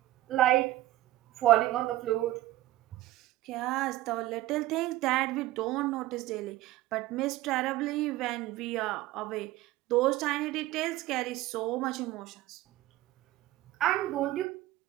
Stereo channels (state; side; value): quieter; left; 16.2 dB